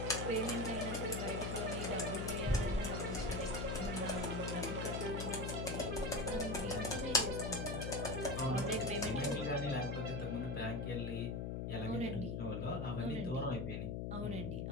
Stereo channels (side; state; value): left; noise; hum, 2 dB below the sound